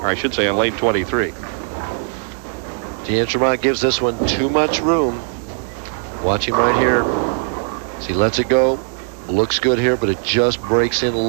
I should say on lane 23. D'Entremont gives this one too much room. Watch him right here. As he lets it go. Looks good here, but it just breaks in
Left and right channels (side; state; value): left; silent; digital silence